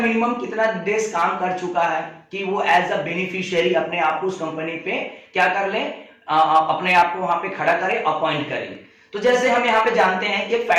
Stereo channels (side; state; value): both; identical; correlation 1.00